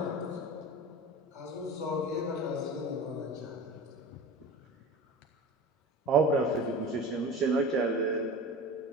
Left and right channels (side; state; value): both; normal; correlation 0.34